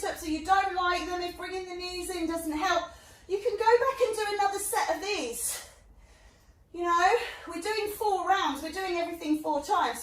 or you don't like them, if bringing the knees in doesn't help, you can go back and do another set of these. You know, we're doing 4 rounds, we're doing everything 4 times,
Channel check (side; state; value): both; identical; correlation 1.00